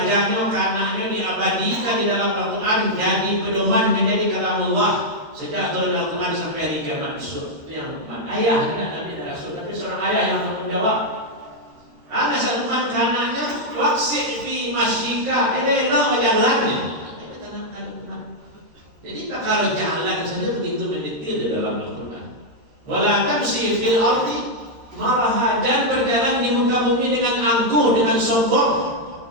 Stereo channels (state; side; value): late; left; 13 ms